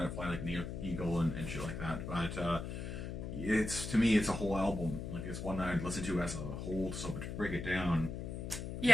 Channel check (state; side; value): noise; left; hum, 5 dB below the sound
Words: it, Fly Like an Eagle and shit like that, but to me it's a whole album. It's one that I'd listen to as a whole. So to break it down, you